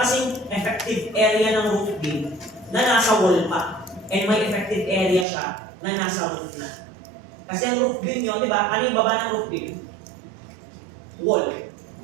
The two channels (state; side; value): drops out; left; at 5.2 s